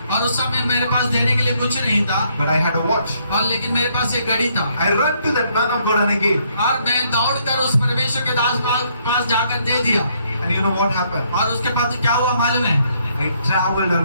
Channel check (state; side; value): inverted; both; correlation -0.70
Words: और उस समय मेरे पास देने के लिए कुछ नहीं था, but I had a watch. और लेकिन मेरे पास एक घड़ी था, I ran to that man of God and I gave. और मैं दौड़कर उस परमेश्वर के दास पास जाकर दे दिया। And you know what happened? और उसके बाद क्या हुआ मालूम है? I traveled